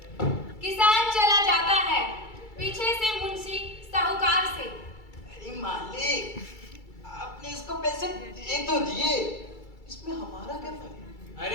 किसान चला जाता है, पीछे से मुंशी साहूकार से। अरे मालिक, आपने इसको पैसे दे तो दिए, इसमें हमारा क्या फर्क?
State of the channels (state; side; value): late; right; 2.3 ms